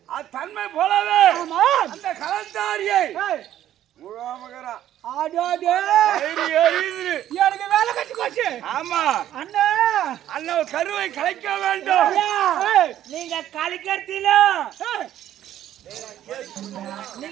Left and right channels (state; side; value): quieter; left; 11.9 dB